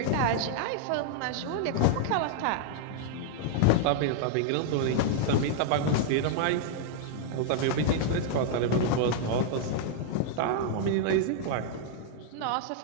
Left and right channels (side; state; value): both; different; correlation -0.01